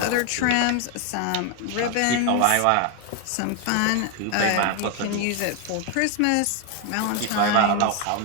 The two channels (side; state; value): both; different; correlation 0.01